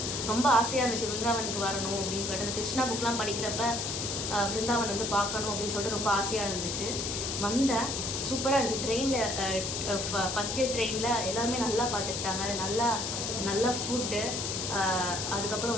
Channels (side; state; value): left; noise; hiss, 3 dB below the sound